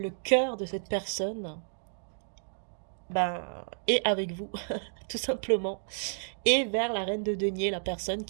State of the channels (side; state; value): left; silent; digital silence